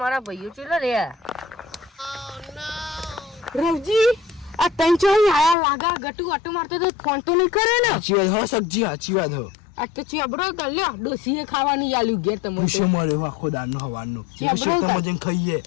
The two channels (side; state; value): right; drops out; at 5.6 s